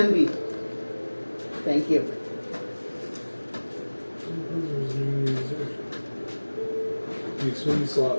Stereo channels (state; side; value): inverted; both; correlation -1.00